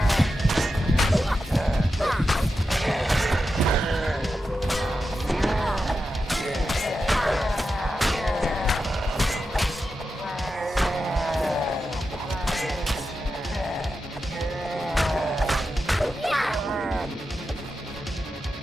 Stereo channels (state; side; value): normal; both; correlation 0.89